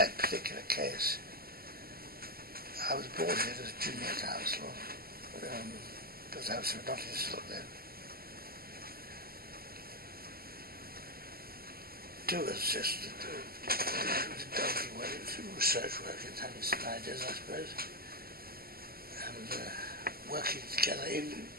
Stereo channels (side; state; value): left; late; 0.44 ms